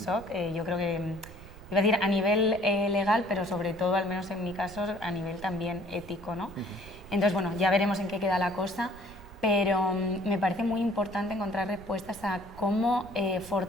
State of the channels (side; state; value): right; noise; rumble, 18 dB below the sound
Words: Yo creo que, iba a decir a nivel legal, pero sobre todo, al menos en mi caso, a nivel también ético, ¿no? Entonces, bueno, ya veremos en qué queda la cosa, pero me parece muy importante encontrar respuestas a cómo